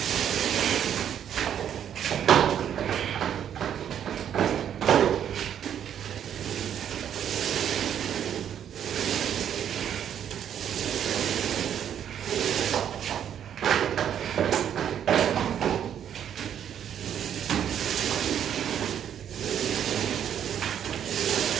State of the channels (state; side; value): quieter; left; 9.4 dB